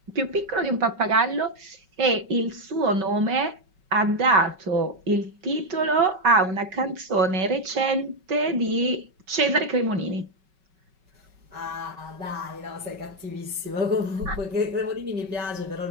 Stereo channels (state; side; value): late; left; 5.3 ms